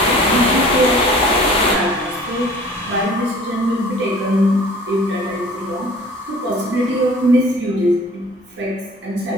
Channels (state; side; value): normal; both; correlation 0.48